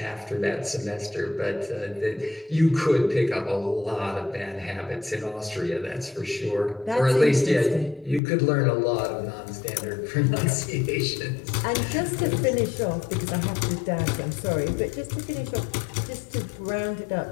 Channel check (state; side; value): drops out; right; at 8.2 s